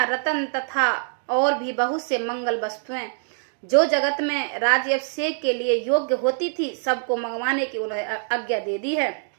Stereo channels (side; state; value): left; silent; 62 dB below the other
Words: रत्न तथा और भी बहुत से मंगल वस्तुएं जो जगत में राज्याभिषेक के लिए योग्य होती थी सबको मंगवाने की उन्हें आज्ञा दे दी है।